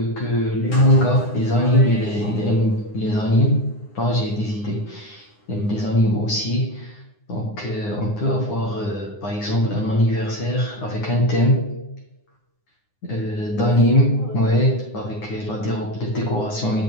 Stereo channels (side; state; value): right; late; 9.7 ms